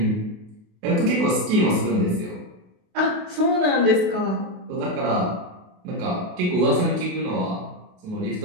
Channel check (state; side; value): late; left; 28 ms